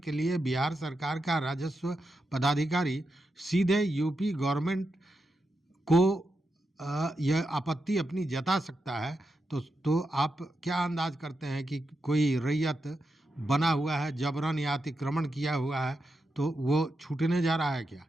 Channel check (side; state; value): both; normal; correlation 0.87